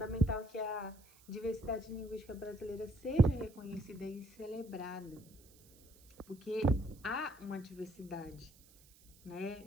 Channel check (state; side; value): noise; right; hiss, 25 dB below the sound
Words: que a diversidade linguística brasileira seja reconhecida e celebrada, porque há uma diversidade,